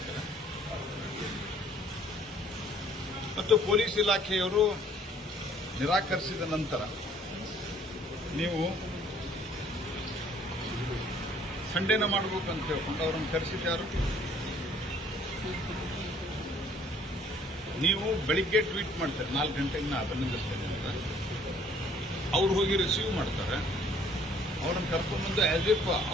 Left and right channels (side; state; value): both; normal; correlation 0.58